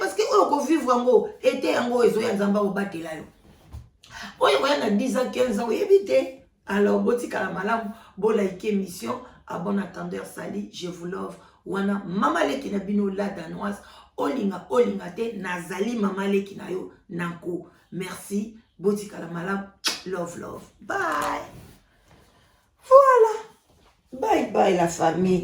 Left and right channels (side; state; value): both; identical; correlation 1.00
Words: que oyo kovivre yango été yango ezoya nzambe obatela yo oyo koya na 10 ans 15 ans oyebi te alors botikala malamu bolaike émission à bon attendeur sali je vous love wana mama leki na bino la danoise olinga te nazali mama leki na yo nanko merci botikala malamu love bye voilà bye la